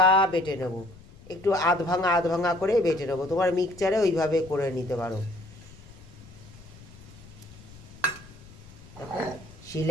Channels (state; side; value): noise; left; rumble, 20 dB below the sound